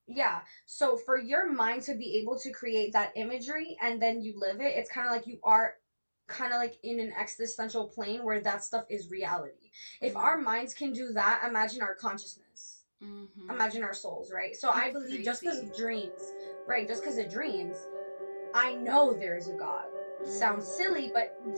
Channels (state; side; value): inverted; both; correlation -1.00